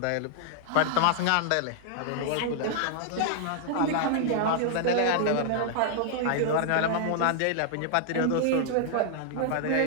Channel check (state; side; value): different; both; correlation -0.01